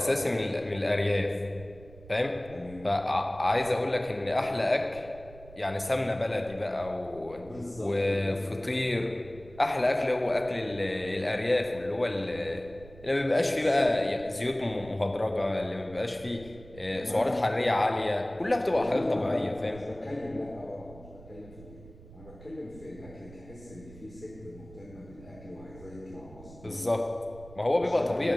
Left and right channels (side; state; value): right; noise; rumble, 19 dB below the sound